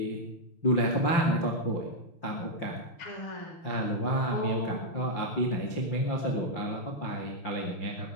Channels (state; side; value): late; right; 5.8 ms